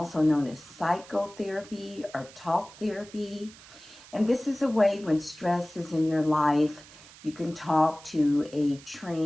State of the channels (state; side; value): noise; right; hiss, 20 dB below the sound